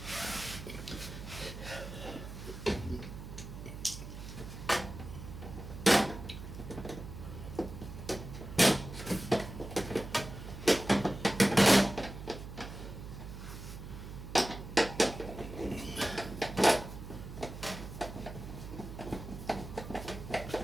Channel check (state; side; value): noise; right; hum, 10 dB below the sound